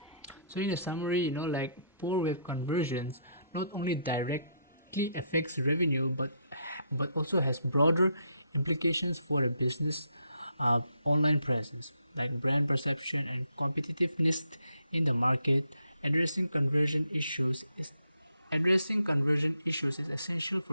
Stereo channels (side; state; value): both; inverted; correlation -0.72